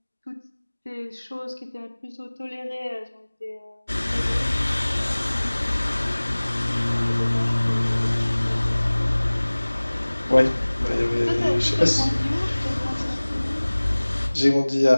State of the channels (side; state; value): both; inverted; correlation -1.00